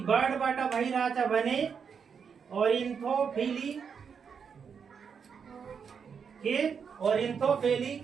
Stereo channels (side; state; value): left; quieter; 6.6 dB